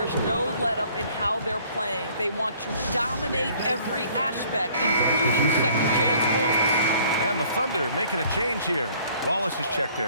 no let-up in how they're playing. They want to dominate every aspect, including second-chance points. And the Thunder making a change here. Wallace is checked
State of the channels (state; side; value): inverted; both; correlation -0.57